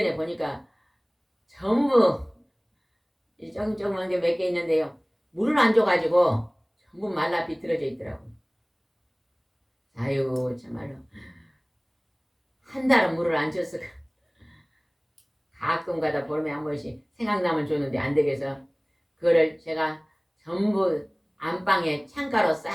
보니까 전부 조금조금한 게 몇 개 있는데요. 물을 안 줘가지고 전부 말라 비틀어져 있더라고요. 아유 참말로 한 달은 물을 안 줬어. 가끔가다 보름에 한 번씩 생각나면 줬는데 안 되겠어. 그거를 제가 전부 안방에 창가로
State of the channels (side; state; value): both; identical; correlation 1.00